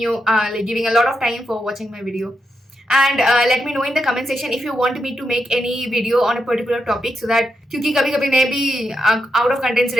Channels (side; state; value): both; normal; correlation 0.84